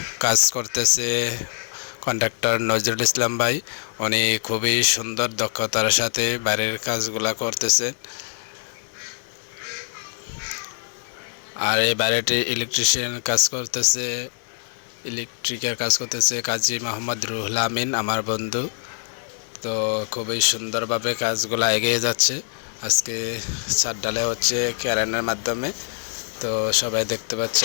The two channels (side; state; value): right; silent; digital silence